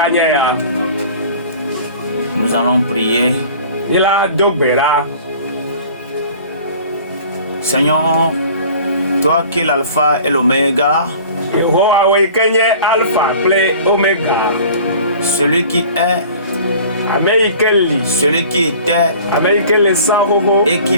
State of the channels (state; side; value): inverted; both; correlation -0.46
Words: Nous allons prier. Seigneur, toi qui es l'alpha et l'oméga, celui qui est, celui qui était et qui